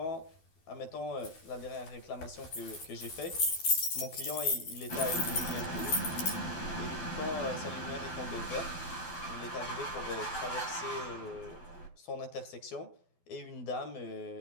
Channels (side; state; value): right; late; 12 ms